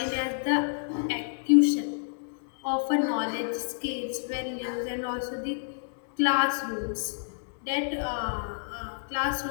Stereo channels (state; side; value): silent; right; 59 dB below the other